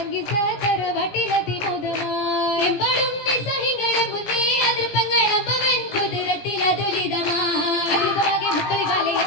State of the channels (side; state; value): right; late; 17 ms